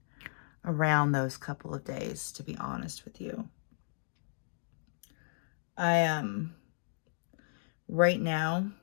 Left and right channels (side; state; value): right; silent; digital silence